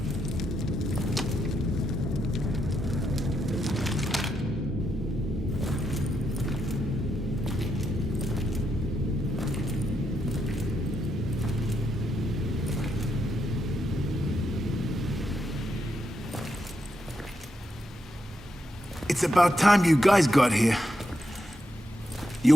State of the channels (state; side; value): normal; both; correlation 0.82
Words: It's about time you guys got here. You're